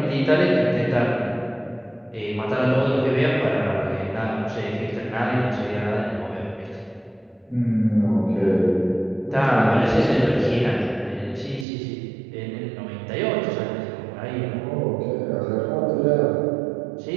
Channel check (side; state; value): left; drops out; at 11.7 s